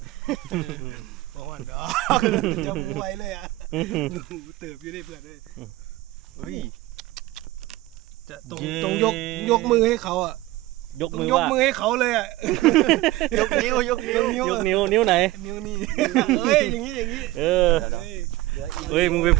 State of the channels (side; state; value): left; quieter; 17.9 dB